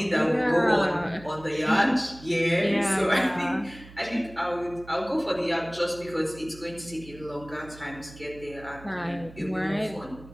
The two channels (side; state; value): right; noise; hum, 19 dB below the sound